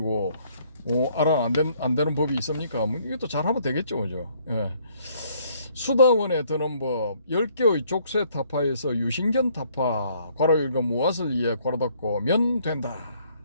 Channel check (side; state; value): both; inverted; correlation -0.65